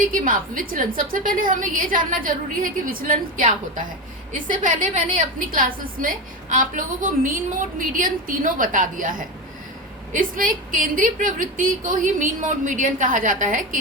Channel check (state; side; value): normal; both; correlation 0.18